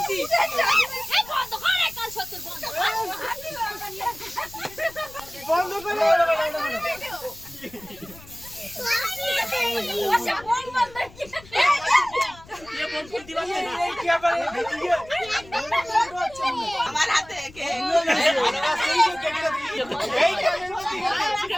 এই বন্ধ করে কাল সত্তর বন্ধ বন্ধ করে ওসব বল বন্ধ কি ये बोल फुल दिवा ना এই কি আবার আমার হাতে কে এই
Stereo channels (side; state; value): left; noise; rumble, 21 dB below the sound